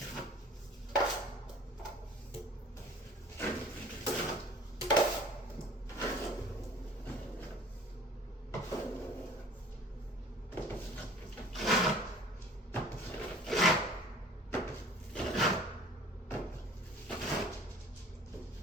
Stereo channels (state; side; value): normal; both; correlation 0.48